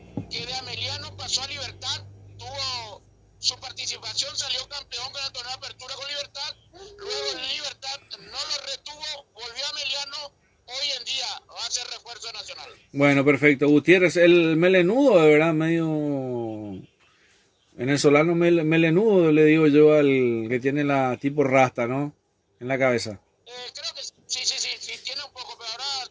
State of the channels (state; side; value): identical; both; correlation 1.00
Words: que de Ameliano pasó a Libertad, tuvo su participación, salió campeón con el torneo de apertura con Libertad, luego en Libertad no lo retuvo, volvió a Ameliano, hoy en día va a ser refuerzo nacional. Bueno, perfecto. Gutiérrez, el melenudo, de verdad, medio venezolano melenudo, le digo yo al que tiene la tipo rasta, ¿no? En la cabeza. Creo que sí, tiene un poco, pero ahora